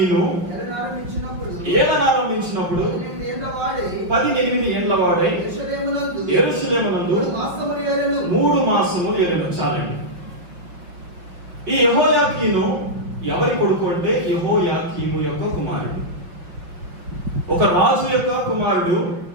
ఏలనారంభించినప్పుడు 18 ఏళ్ల వాడై యెరూషలేమునందు 3 మాసములు ఏలెను. చాలండి. ఈ యెహోయాకీను ఎవరి కొడుకు అంటే యెహోయాకీము యొక్క కుమారుడు. ఒక రాజు యొక్క కుమారుడు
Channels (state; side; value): late; left; 5.7 ms